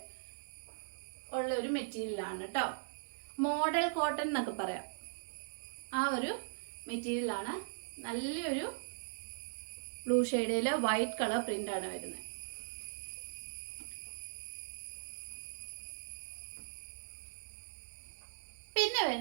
ഉള്ള ഒരു മെറ്റീരിയലാണ് കേട്ടോ. മോഡൽ കോട്ടൺ എന്നൊക്കെ പറയാം. ആ ഒരു മെറ്റീരിയലാണ്. നല്ലൊരു ബ്ലൂ ഷെയ്ഡിൽ വൈറ്റ് കളർ പ്രിൻ്റാണ് വരുന്നത്. പിന്നെ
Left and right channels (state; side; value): silent; left; digital silence